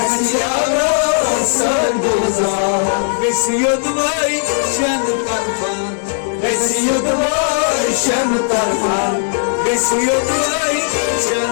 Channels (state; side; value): silent; right; 69 dB below the other